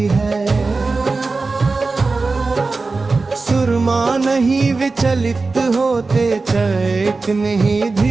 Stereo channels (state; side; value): quieter; left; 3.8 dB